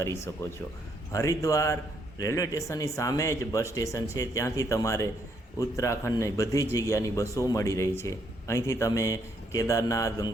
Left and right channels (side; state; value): both; normal; correlation 0.72